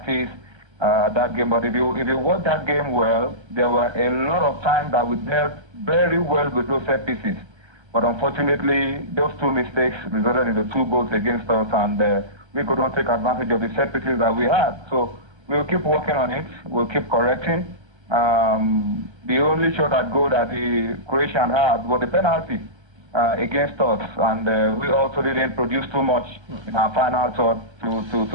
that game. But if you watch that game well, there were a lot of times that we dealt very well with those set pieces. But unfortunately, those 2 mistakes resulted in the 2 goals against us, and we couldn't take advantage of the set pieces that we had. So we'll keep working on it. We'll keep correcting. The only shot at goal that the Croatian had was the penalty against us, and we also didn't produce too much in our final shot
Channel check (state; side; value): late; left; 1.3 ms